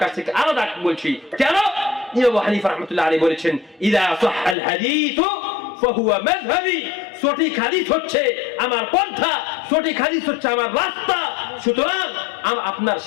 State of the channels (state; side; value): drops out; right; at 4.5 s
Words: কাছ থেকে আলাদা বলছি। কেন? ইমাম আবু হানিফা রাহমাতুল্লাহ আলাইহি বলেছেন ইযা সাহহাল হাদিস ফাহুয়া মাযহাবি, সঠিক হাদিস হচ্ছে আমার পন্থা, সঠিক হাদিস হচ্ছে আমার রাস্তা। সুতরাং আপনার